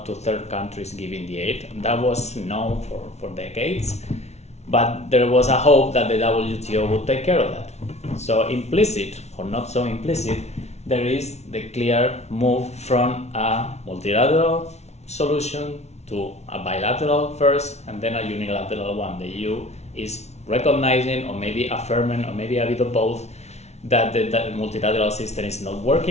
to third countries giving the aid. That was known for decades. But there was a hope that the WTO would take care of that. So implicit, or not so implicit, there is the clear move from a multilateral solution to a bilateral first, and then a unilateral one. The EU is recognizing, or maybe affirming, or maybe a bit of both, that the multilateral system is not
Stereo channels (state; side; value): late; right; 0.32 ms